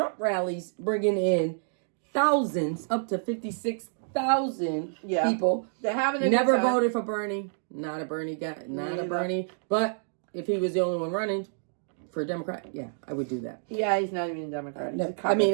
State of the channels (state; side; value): silent; left; digital silence